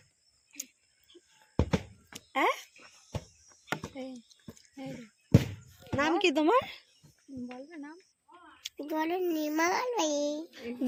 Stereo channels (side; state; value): both; identical; correlation 1.00